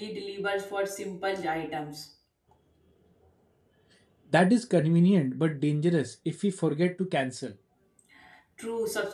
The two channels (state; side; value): identical; both; correlation 1.00